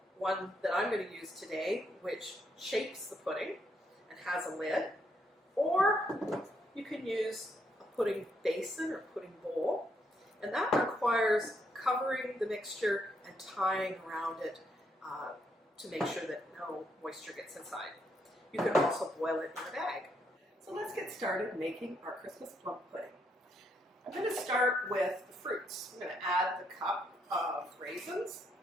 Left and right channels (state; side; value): normal; both; correlation 0.75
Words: one that I'm going to use today, which shapes the pudding and has a lid, or you can use a pudding basin or pudding bowl, and that requires covering the mixture and tying around it to make sure that no moisture gets inside. You can also boil it in a bag. So let's get started making our Christmas plum pudding. I'm going to start with the fruits. I'm going to add the cup of raisins.